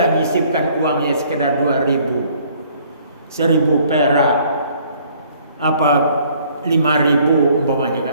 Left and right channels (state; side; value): inverted; both; correlation -0.60